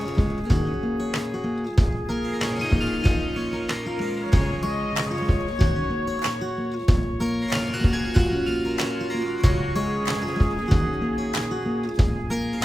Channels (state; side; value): normal; both; correlation 0.94